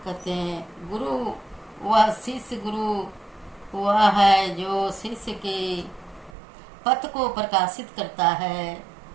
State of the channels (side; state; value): left; drops out; at 6.4 s